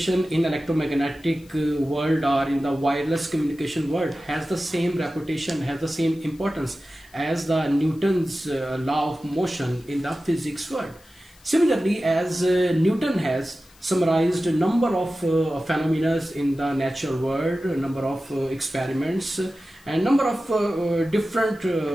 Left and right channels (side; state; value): left; noise; hiss, 28 dB below the sound